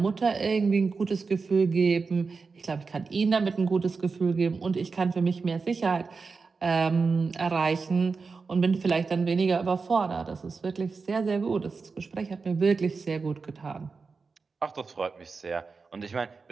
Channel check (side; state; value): left; quieter; 4.6 dB